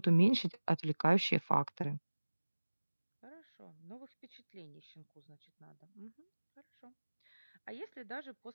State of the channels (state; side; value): inverted; both; correlation -1.00